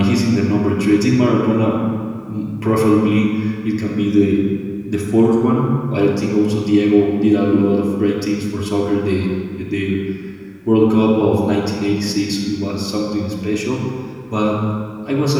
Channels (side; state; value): both; identical; correlation 1.00